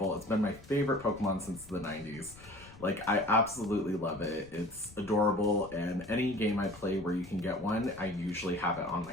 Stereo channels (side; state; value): left; noise; rumble, 20 dB below the sound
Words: It's been my favorite Pokemon since the 90s. Like, I absolutely love it. It's adorable, and any game I play where you can get one, I usually have it on